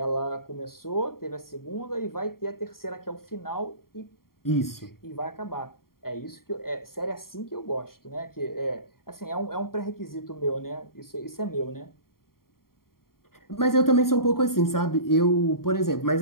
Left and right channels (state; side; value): late; right; 0.93 ms